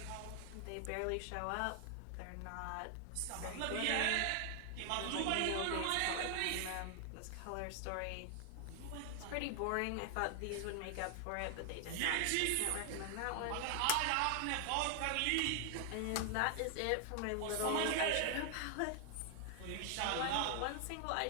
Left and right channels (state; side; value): different; both; correlation 0.00